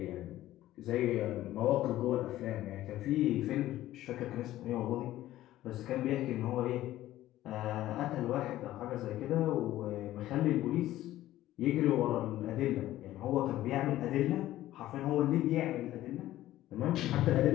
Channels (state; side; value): quieter; right; 14.6 dB